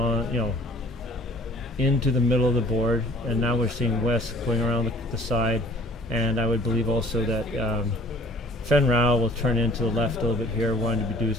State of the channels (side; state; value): both; normal; correlation 0.52